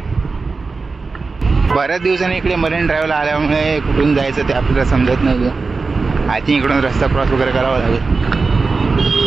बऱ्याच दिवसांनी इकडे मरीन ड्राईव्हला आल्यामुळे कुठून जायचं ते आपल्याला समजत नाही. आय थिंक इकडून रस्ता क्रॉस वगैरे करावा लागेल.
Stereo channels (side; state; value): left; quieter; 4.2 dB